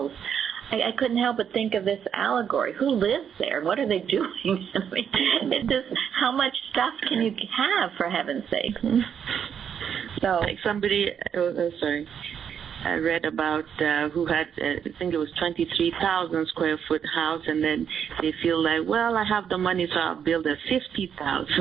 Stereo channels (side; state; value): left; quieter; 8.0 dB